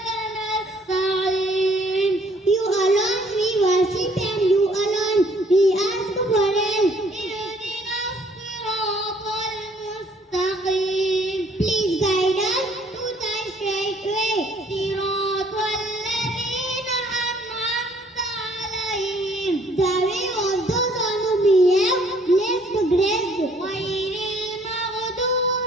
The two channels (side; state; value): both; normal; correlation 0.62